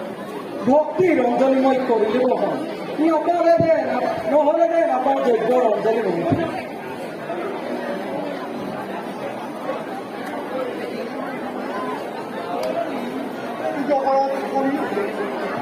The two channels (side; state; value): both; identical; correlation 1.00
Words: ভক্তি ৰঞ্জনী মই কৰিলে নহয় নহ'লে দে নাপাওঁ যজ্ঞ ৰঞ্জনী ৰঞ্জনী